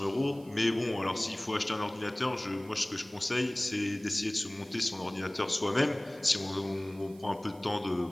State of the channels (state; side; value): noise; right; hiss, 25 dB below the sound